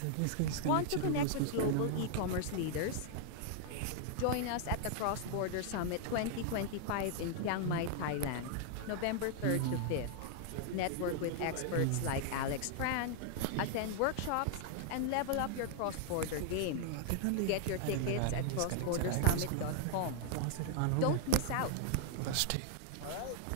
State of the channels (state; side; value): different; both; correlation 0.00